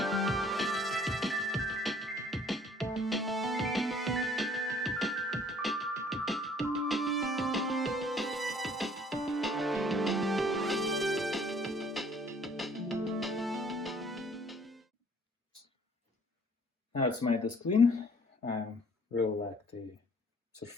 Now it's made this clean. I really like the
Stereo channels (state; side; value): normal; both; correlation 0.57